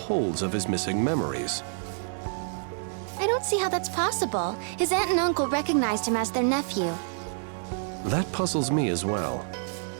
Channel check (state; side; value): silent; left; digital silence